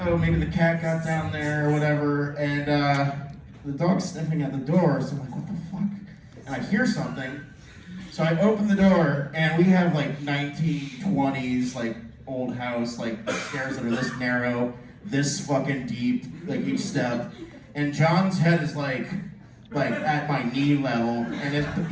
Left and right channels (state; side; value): identical; both; correlation 1.00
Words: maybe the cat got down there or whatever, and the dog's sniffing at the door, so I'm like, what the fuck? And I hear something, so I open the door, and we have like 1920s, like old house, like stairs that are this narrow, this fucking deep, like each step, and Jon's head is like at my knee level, and